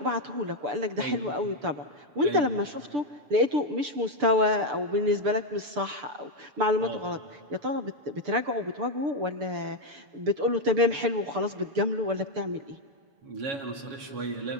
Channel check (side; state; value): left; late; 6.8 ms